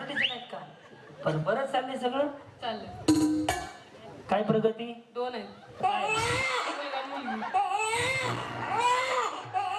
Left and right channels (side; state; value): both; identical; correlation 1.00